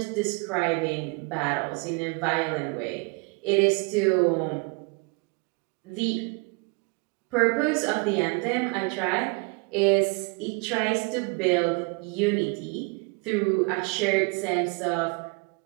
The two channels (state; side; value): quieter; left; 31.3 dB